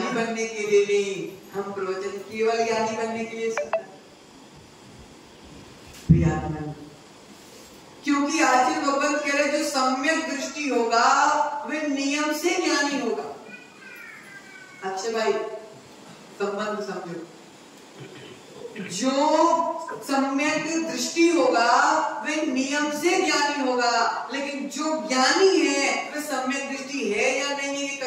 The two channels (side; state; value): both; identical; correlation 1.00